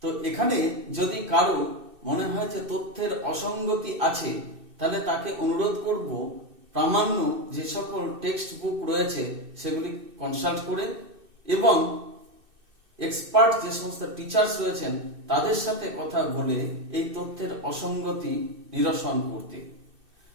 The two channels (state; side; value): late; left; 2.6 ms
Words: তো এখানে যদি কারো মনে হয় যে তথ্যের অসঙ্গতি আছে, তাহলে তাকে অনুরোধ করব প্রামাণ্য যে সকল টেক্সট বুক রয়েছে সেগুলি কনসাল্ট করে এবং এক্সপার্ট যে সমস্ত টিচার্স রয়েছেন তাদের সাথে কথা বলে এই তথ্যের অসঙ্গতি নিরসন করতে।